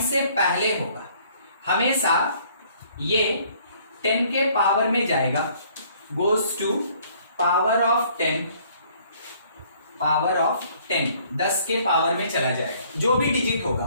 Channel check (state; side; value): inverted; both; correlation -0.60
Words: से पहले होगा हमेशा ये 10 के पावर में जाएगा, गोज टू पावर ऑफ 10, 10 के पावर में चला जाएगा, जो भी डिजिट होगा